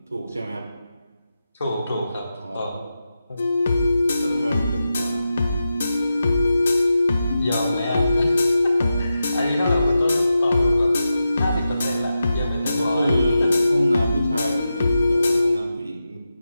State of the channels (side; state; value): both; inverted; correlation -0.90